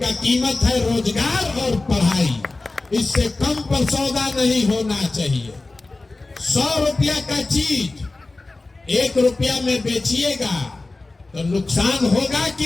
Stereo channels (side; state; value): right; quieter; 3.2 dB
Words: कीमत है रोजगार और पढ़ाई। इससे कम पर सौदा नहीं होना चाहिए। 100 रुपया का चीज 1 रुपया में बेचिएगा तो नुकसान होगा